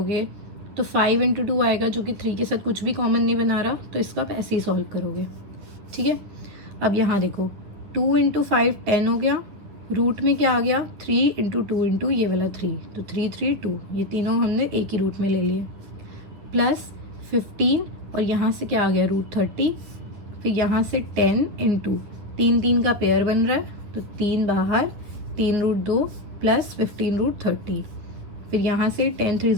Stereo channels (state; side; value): late; left; 9.8 ms